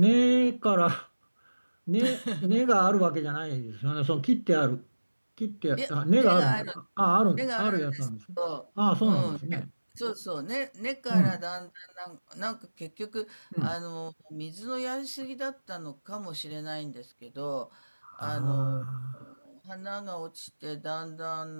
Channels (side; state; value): both; inverted; correlation -1.00